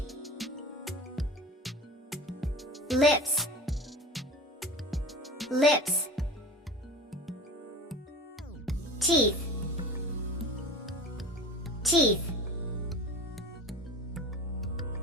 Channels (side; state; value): both; normal; correlation 0.34